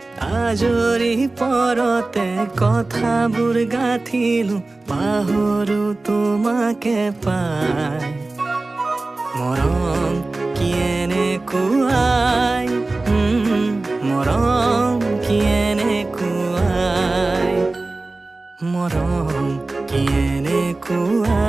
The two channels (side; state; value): left; quieter; 3.2 dB